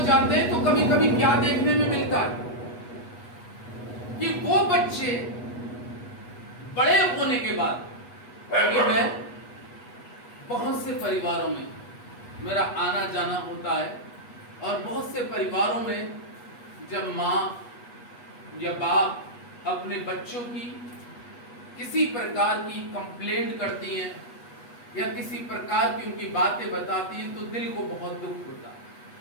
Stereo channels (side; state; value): right; late; 8.2 ms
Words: हैं तो कभी कभी क्या देखने में मिलता है कि वो बच्चे बड़े होने के बाद, क्योंकि मैं बहुत से परिवारों में मेरा आना जाना होता है और बहुत से परिवारों में जब माँ या बाप अपने बच्चों की किसी प्रकार की कंप्लेंट करती हैं या किसी प्रकार की उनकी बातें बताती हैं तो दिल को बहुत दुख होता है।